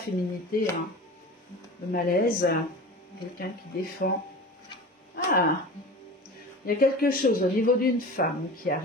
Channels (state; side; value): normal; both; correlation 0.34